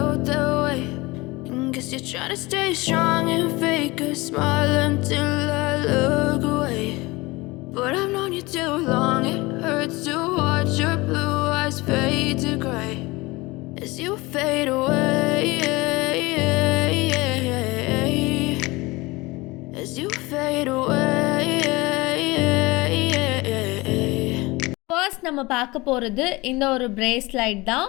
that way. And guess you're trying to stay strong and fake a smile until I look away. But I've known you too long, it hurts to watch your blue eyes fade to gray as you fade away, as you fade away. First நம்ம பார்க்க போகிறது இந்த ஒரு bracelet தான்.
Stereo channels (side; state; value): right; quieter; 22.5 dB